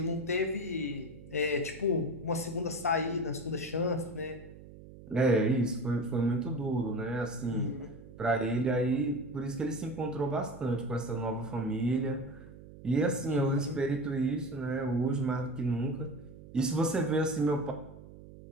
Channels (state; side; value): noise; right; hum, 17 dB below the sound